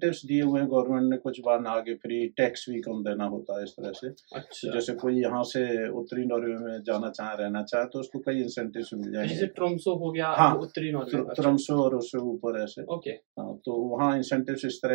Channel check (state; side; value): silent; left; digital silence